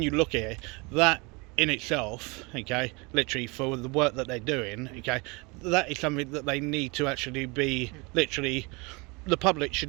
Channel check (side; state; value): left; quieter; 27.8 dB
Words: you look at it, that in itself, okay, literally for the work that they're doing, okay, that is something that they need to actually be, literally, the public